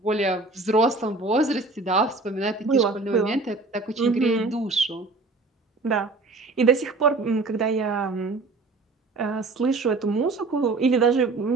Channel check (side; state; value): left; quieter; 3.5 dB